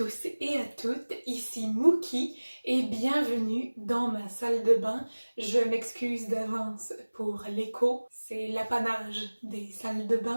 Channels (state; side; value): inverted; both; correlation -1.00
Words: et à toutes, ici Mookie et bienvenue dans ma salle de bain. Je m'excuse d'avance pour l'écho, c'est l'apanage des salles de